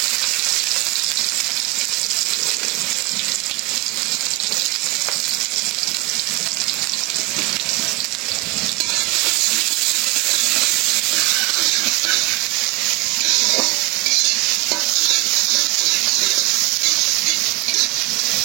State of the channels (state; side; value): quieter; left; 24.5 dB